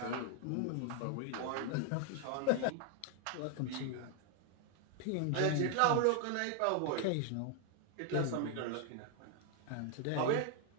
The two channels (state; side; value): different; both; correlation 0.00